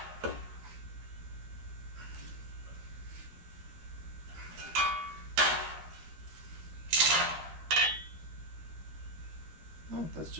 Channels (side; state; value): left; late; 13 ms